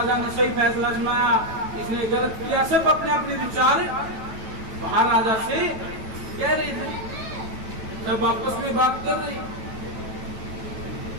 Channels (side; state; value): left; late; 9.1 ms